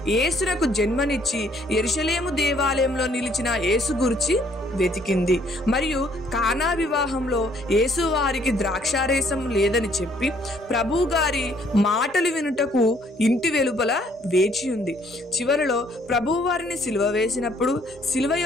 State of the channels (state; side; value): normal; both; correlation 0.64